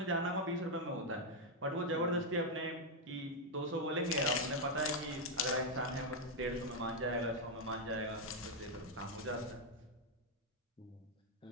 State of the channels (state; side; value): normal; both; correlation 0.01